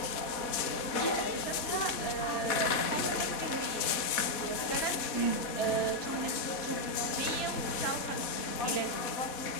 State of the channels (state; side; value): late; right; 4.1 ms